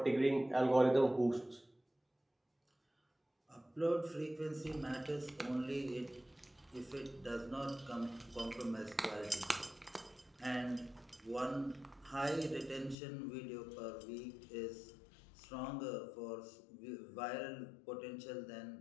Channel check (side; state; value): right; drops out; at 13.0 s